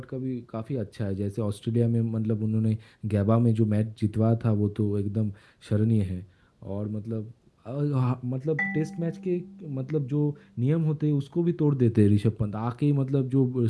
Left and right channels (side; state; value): both; identical; correlation 1.00